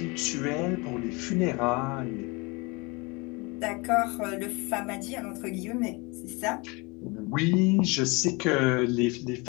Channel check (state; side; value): quieter; right; 27.2 dB